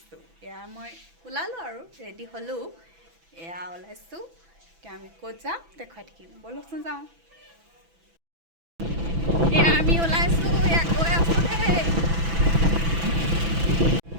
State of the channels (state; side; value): late; left; 6.0 ms